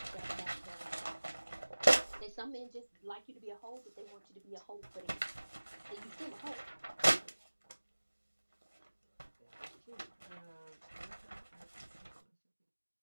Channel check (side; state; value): both; inverted; correlation -1.00